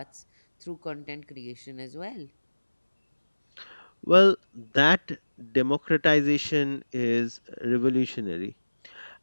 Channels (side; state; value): both; inverted; correlation -1.00